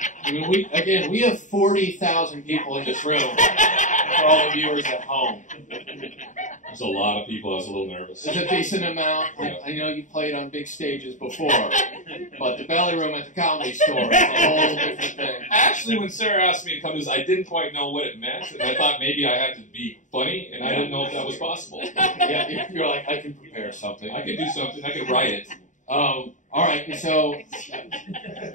I mean, we have 40,000 people in this room for all the viewers at home. There's a lot of people. I was a little nervous. It's a decent amount. I know you played on big stages before, but the belly room at the Comedy Store is a whole different thing. Actually, when Sarah asked me to come to this, I didn't quite know what it meant, and I thought maybe I had to be funny, and I didn't know if that was possible. Yeah, you're like, I can prepare something. I could do something. I could write it. All right, so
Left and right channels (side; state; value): right; late; 0.36 ms